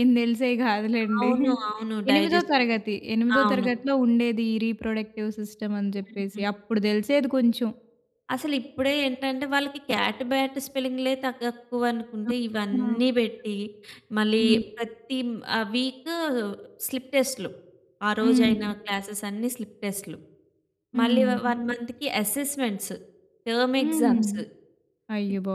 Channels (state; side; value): identical; both; correlation 1.00